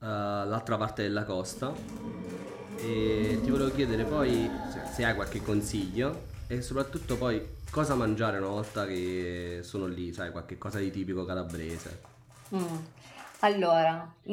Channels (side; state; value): both; identical; correlation 1.00